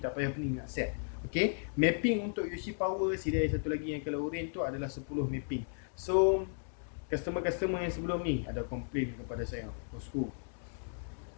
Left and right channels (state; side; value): silent; right; digital silence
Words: tak payah pening nak set. Okay, mapping untuk UC power CDI satu lagi yang color orange tu adalah 10 mapping. So customer-customer yang sebelum ni ada komplain kepada saya, bosku,